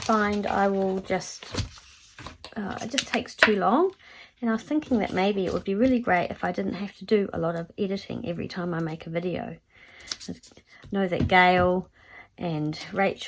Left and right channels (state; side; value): identical; both; correlation 1.00